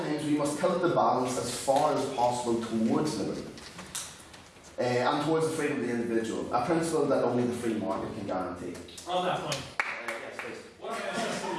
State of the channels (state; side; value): identical; both; correlation 1.00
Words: we must tilt the balance as far as possible towards liberty and towards the freedom of the individual, a principle that only the free market can guarantee. On that point, yes, please. What about a system